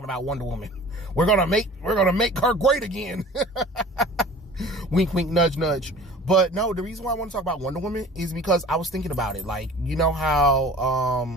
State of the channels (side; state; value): both; normal; correlation 0.44